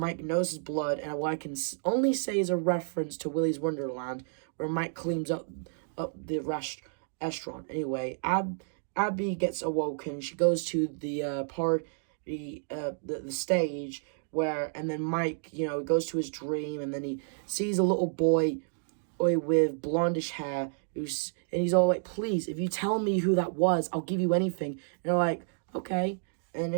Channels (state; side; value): silent; left; digital silence